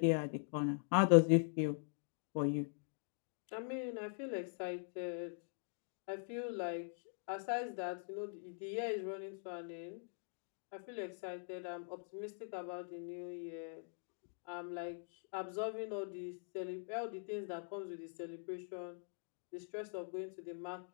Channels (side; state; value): right; silent; digital silence